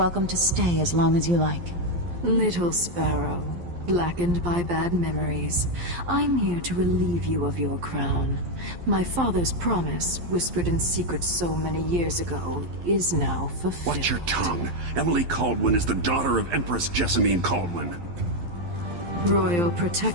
to stay as long as you like. Little sparrow, blackened by bad memories, I'm here to relieve you of your crown. My father's promise, whispered in secret so many years ago, is now fulfilled. Watch your tongue. Emily Caldwin is the daughter of Empress Jessamine Caldwin. Royal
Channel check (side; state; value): left; late; 11 ms